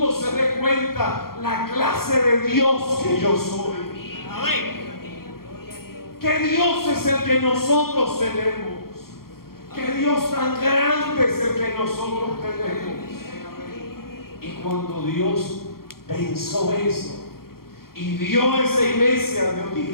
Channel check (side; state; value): right; late; 0.93 ms